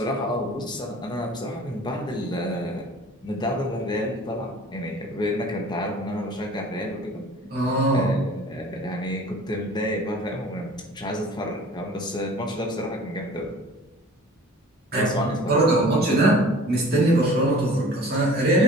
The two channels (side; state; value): both; normal; correlation 0.46